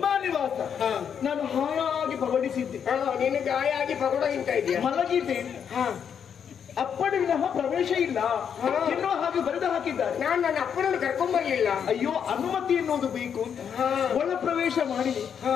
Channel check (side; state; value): right; quieter; 7.7 dB